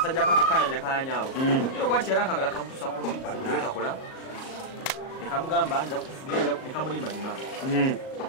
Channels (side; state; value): right; late; 38 ms